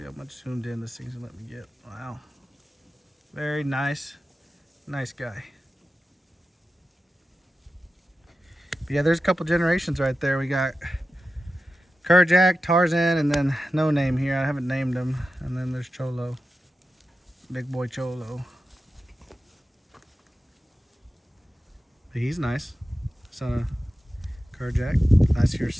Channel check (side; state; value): both; normal; correlation 0.92